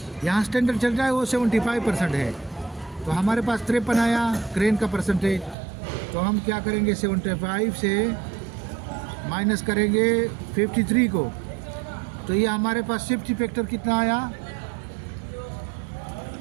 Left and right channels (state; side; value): drops out; left; at 5.6 s